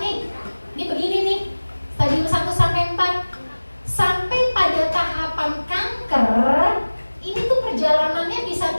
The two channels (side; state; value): both; inverted; correlation -1.00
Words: nih. Ini begini nih. Stadium 1 sampai 4. Sampai pada tahapan kanker, ini tuh perjalanannya bisa